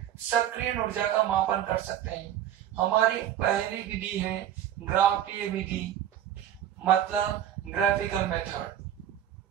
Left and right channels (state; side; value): quieter; left; 10.9 dB